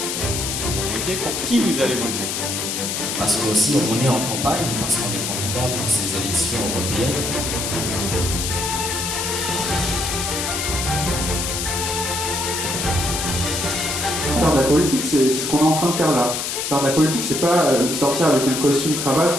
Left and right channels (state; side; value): noise; left; hiss, 2 dB below the sound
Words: pour qui vous allez voter? Parce qu'aussi on est en campagne, parce qu'on est candidat pour ces élections européennes. Faire de la politique, c'est ce qu'on est en train de faire là. Faire de la politique, c'est pas sortir avec un costume cravate,